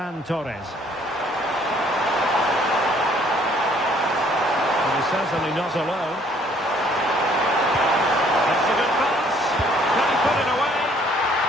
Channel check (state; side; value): normal; both; correlation 0.61